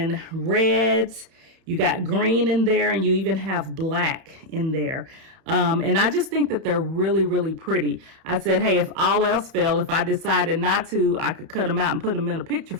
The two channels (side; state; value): left; late; 31 ms